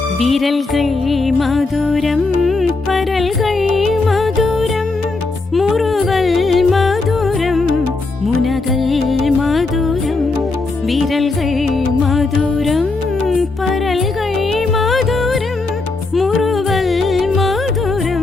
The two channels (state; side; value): quieter; right; 3.5 dB